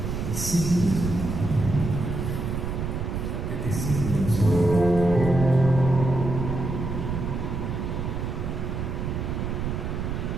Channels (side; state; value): right; noise; rumble, 3 dB below the sound